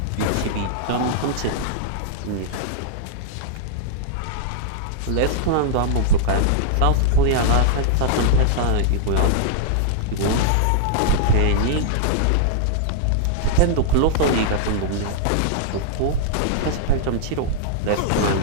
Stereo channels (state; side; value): different; both; correlation -0.01